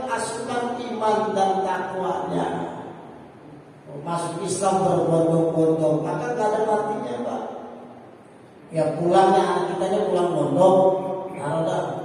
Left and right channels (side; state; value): both; identical; correlation 1.00